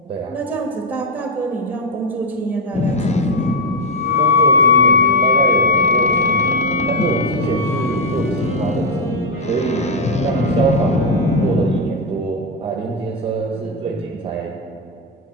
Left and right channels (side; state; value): both; normal; correlation 0.04